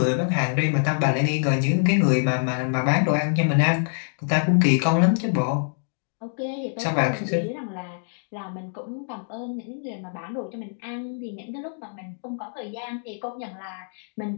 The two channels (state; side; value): silent; right; digital silence